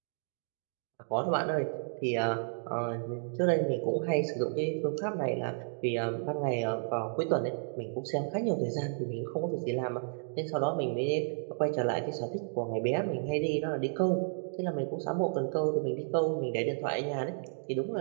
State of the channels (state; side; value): silent; left; digital silence